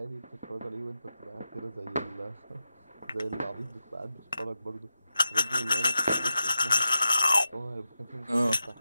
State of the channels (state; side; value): inverted; both; correlation -0.91